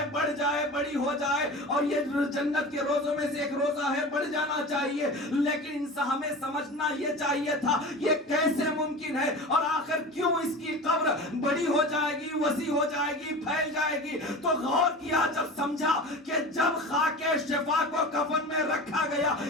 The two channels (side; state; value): both; normal; correlation 0.33